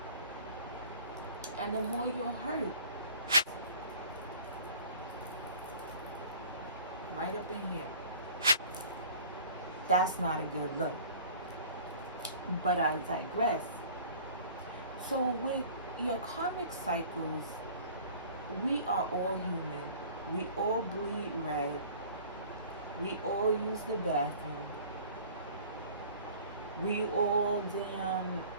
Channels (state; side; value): inverted; both; correlation -0.47